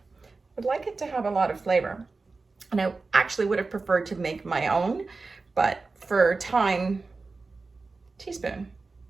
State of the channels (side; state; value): left; quieter; 3.9 dB